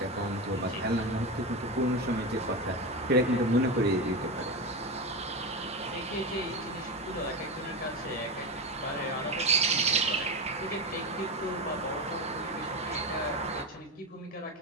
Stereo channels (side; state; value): both; normal; correlation 0.17